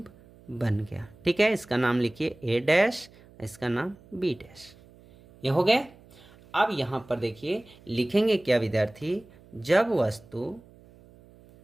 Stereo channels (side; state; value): right; noise; hum, 25 dB below the sound